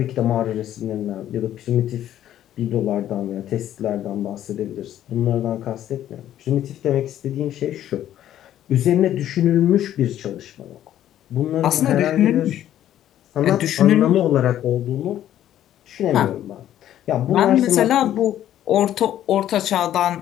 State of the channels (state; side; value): quieter; right; 11.8 dB